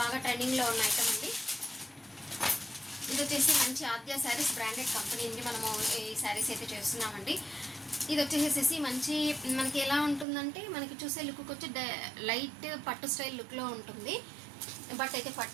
ట్రెండింగ్లో ఉన్న ఐటమ్ అండి. ఇది వచ్చేసి మంచి ఆద్య శారీస్ బ్రాండెడ్ కంపెనీ అండి. మనము ఈ శారీస్ అయితే చేస్తున్నామండి. ఇది వచ్చేసేసి మంచి మనకి ఎలా ఉంటుందంటే, మనకి చూసే లుక్ వచ్చి లైట్ పట్టు స్టైల్ లుక్లో ఉంటుంది. బట్ అయితే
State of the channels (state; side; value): drops out; left; at 10.2 s